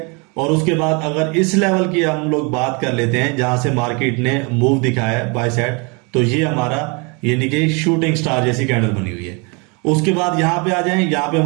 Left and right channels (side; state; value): left; quieter; 31.1 dB